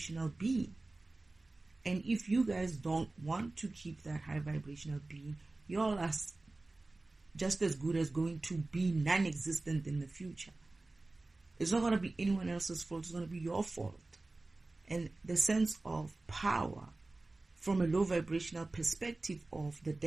being. And if you guys don't want to keep that high vibrational being, you all are just as good as going to be non-existent in the future. It's not going to be anyone else's fault. It's going to be your fault. And the sense of power from a low vibrational perspective of the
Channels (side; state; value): left; quieter; 3.1 dB